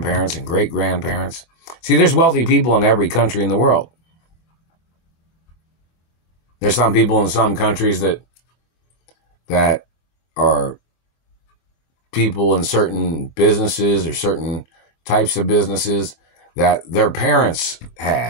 and great-grandparents. See, there's wealthy people in every country in the world. There's some people in some countries that are people in certain businesses or certain types of businesses that their parents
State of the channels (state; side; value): late; right; 24 ms